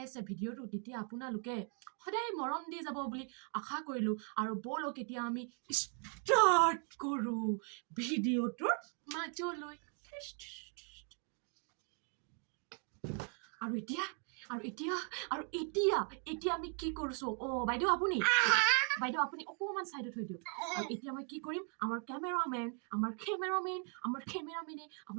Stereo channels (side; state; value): left; quieter; 39.4 dB